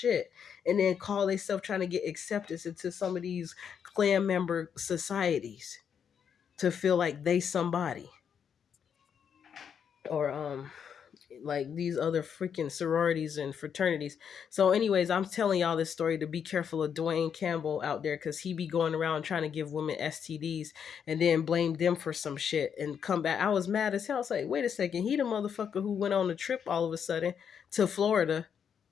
and then call themselves trying to get acceptance into some of these clan member societies to feel like they somebody. Or like these other freaking sororities and fraternities. So anyways, I'm telling y'all this story to be careful of Duane Campbell out there, because he be going around trying to give women STDs and then blame them for some shit and come back. I was mad as hell. I was like, wait a second, he the motherfucker who went on a trip all of a sudden to Florida,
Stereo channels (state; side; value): quieter; right; 7.6 dB